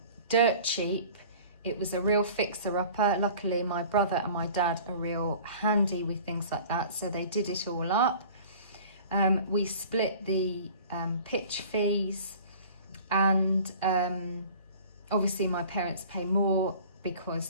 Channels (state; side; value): inverted; both; correlation -0.44